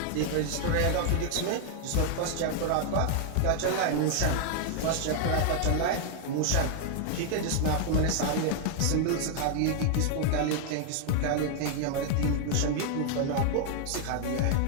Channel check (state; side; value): different; both; correlation 0.00